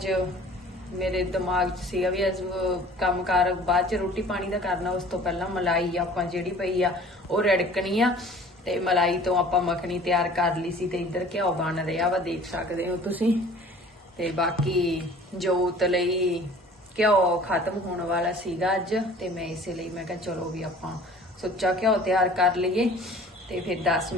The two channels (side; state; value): both; normal; correlation 0.48